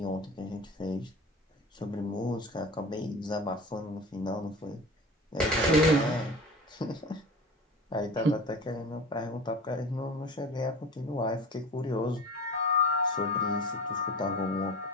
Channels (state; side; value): normal; both; correlation 0.36